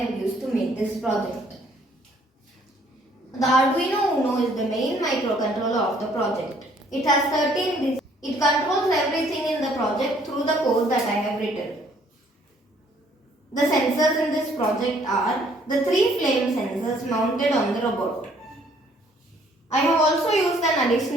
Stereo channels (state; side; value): normal; both; correlation 0.62